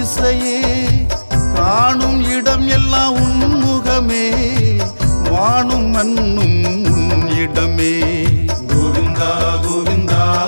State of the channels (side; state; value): both; inverted; correlation -1.00